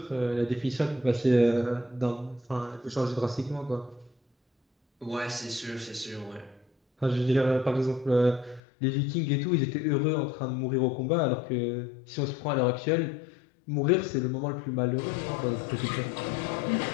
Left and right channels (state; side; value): drops out; right; at 8.6 s